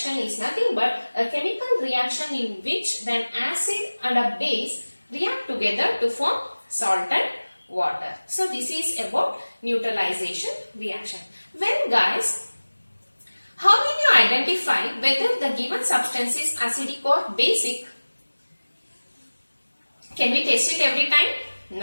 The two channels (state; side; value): inverted; both; correlation -1.00